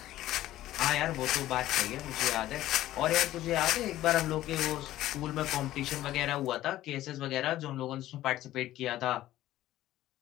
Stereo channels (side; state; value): right; quieter; 14.5 dB